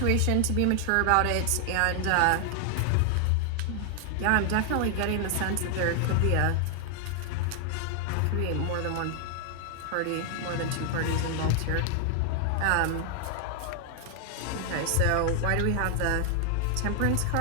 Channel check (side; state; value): both; different; correlation 0.00